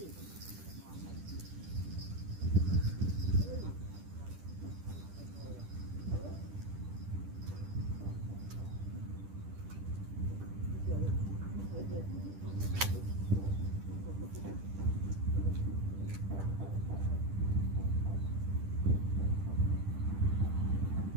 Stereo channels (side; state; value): left; late; 10 ms